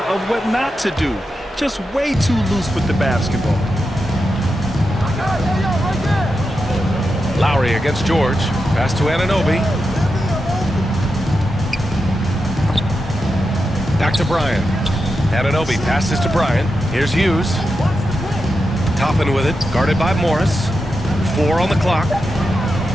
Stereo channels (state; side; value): normal; both; correlation 0.88